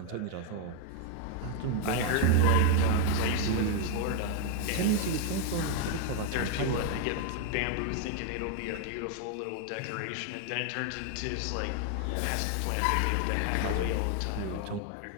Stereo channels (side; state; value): both; different; correlation 0.00